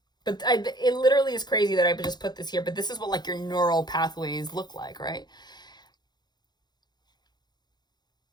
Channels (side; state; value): right; late; 0.20 ms